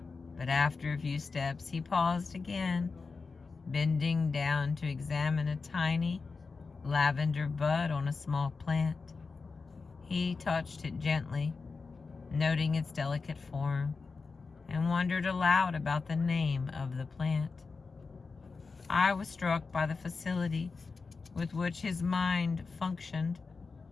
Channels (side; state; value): right; quieter; 4.5 dB